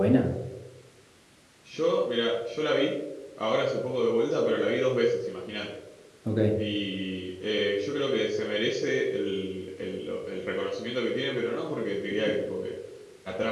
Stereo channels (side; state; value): both; identical; correlation 1.00